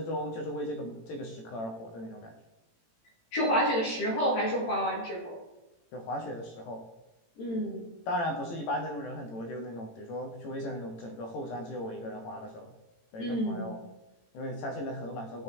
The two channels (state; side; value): late; right; 18 ms